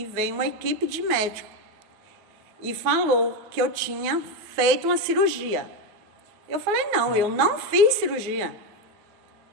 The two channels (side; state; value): left; late; 9.6 ms